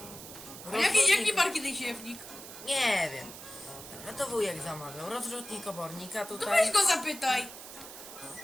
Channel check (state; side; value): noise; right; hiss, 13 dB below the sound